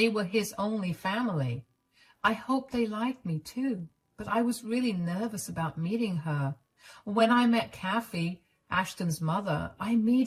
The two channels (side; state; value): both; identical; correlation 1.00